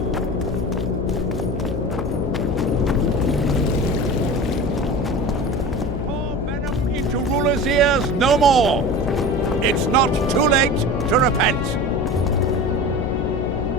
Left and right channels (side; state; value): left; noise; hum, 4 dB below the sound